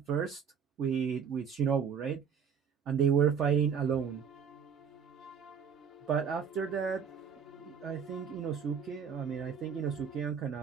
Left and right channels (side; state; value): left; quieter; 7.2 dB